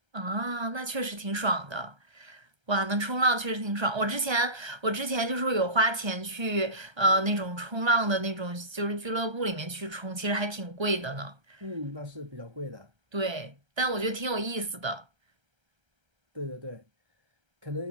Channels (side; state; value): left; late; 1.3 ms